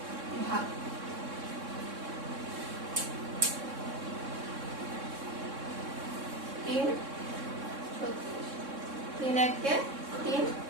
ভাগ। 3 36, 3 একে 3,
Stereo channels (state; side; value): late; left; 3.6 ms